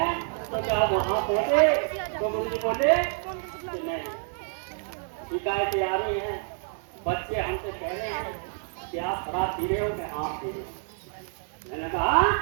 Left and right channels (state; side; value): silent; left; digital silence